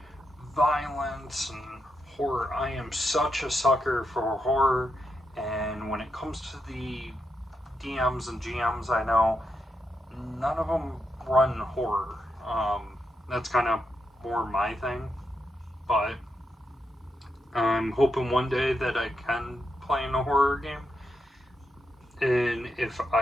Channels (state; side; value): normal; both; correlation 0.84